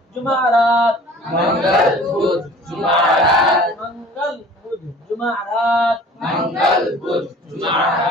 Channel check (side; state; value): both; normal; correlation 0.47